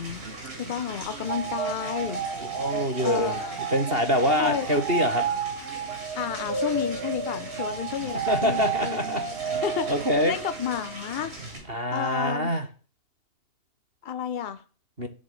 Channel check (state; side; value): late; left; 2.8 ms